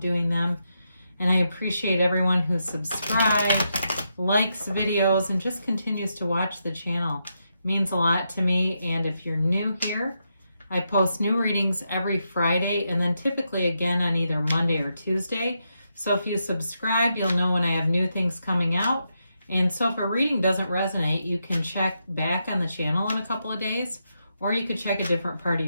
doing them. And I appreciate everyone who subscribes, likes videos, and just continues to watch the channel. It means a lot to me. And if you're new here, I post new readings every Friday and then typically again on either Monday or Tuesday. So if you subscribe, you'll know when I have new things coming out. And so if a reading doesn't resonate, you can check back on the channel in a couple of days, or you could check a different part of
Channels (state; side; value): inverted; both; correlation -0.83